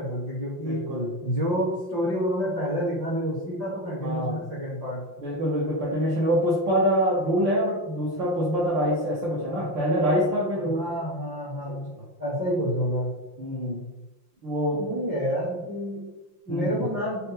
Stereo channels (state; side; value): late; left; 5.7 ms